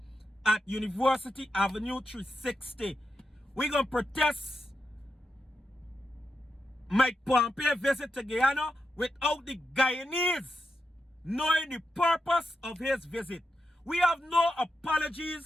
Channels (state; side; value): normal; both; correlation 0.86